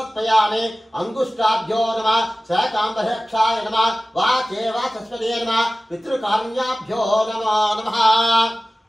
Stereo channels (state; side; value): normal; both; correlation 0.97